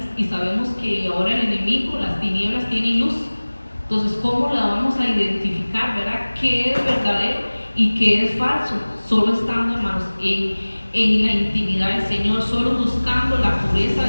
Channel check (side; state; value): both; inverted; correlation -1.00